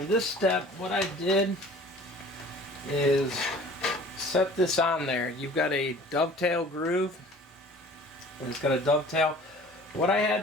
this step, what I did is set this on there. You've got a dovetail groove, and it's got a dovetail. What I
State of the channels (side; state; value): both; normal; correlation 0.47